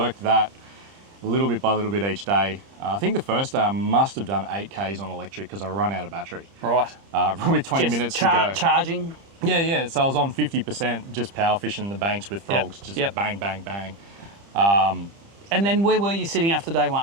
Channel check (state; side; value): late; left; 30 ms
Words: that little bit by little bit each day. I think the first day I must have done 8 Ks on electric because I run out of battery. Right. With 20 minutes to go. Charging? Yeah. So I was on 50% just power fishing the banks with frogs. Just bang, bang, bang. And then where were you sitting after day